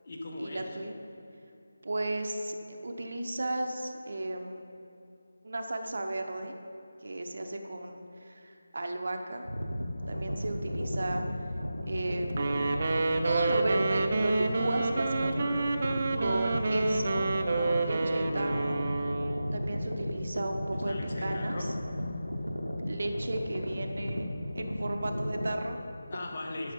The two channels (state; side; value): inverted; both; correlation -0.93